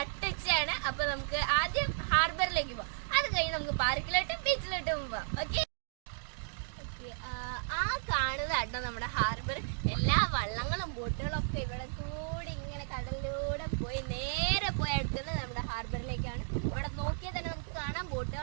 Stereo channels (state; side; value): silent; left; digital silence